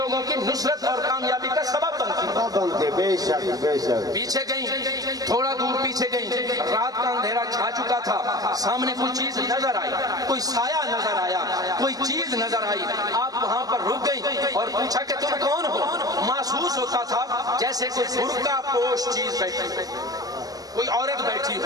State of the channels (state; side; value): late; left; 0.18 ms